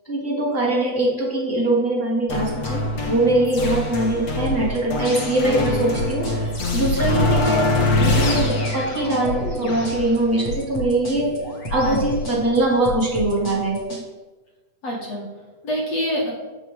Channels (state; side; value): late; right; 8.1 ms